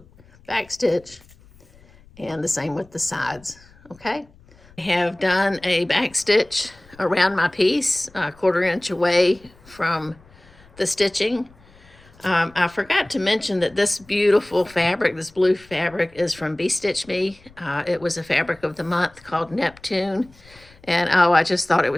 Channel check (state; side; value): noise; left; rumble, 26 dB below the sound